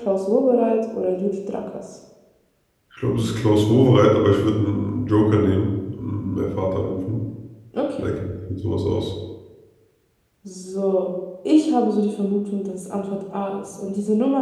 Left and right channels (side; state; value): both; identical; correlation 1.00